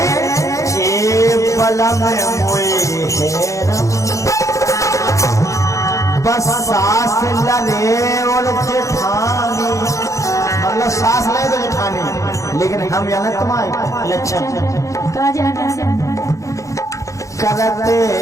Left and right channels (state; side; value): late; right; 0.15 ms